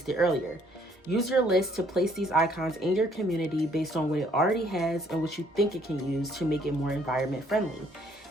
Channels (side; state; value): both; normal; correlation 0.64